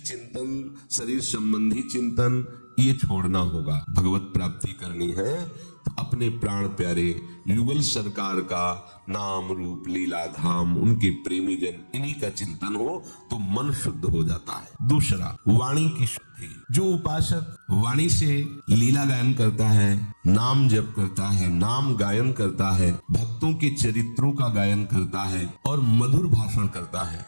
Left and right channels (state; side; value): inverted; both; correlation -1.00